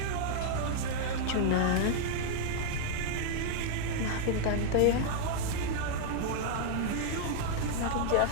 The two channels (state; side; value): different; both; correlation -0.01